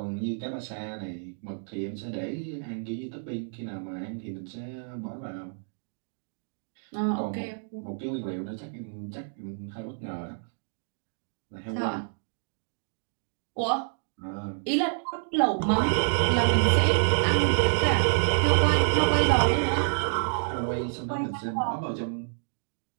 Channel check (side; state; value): left; silent; digital silence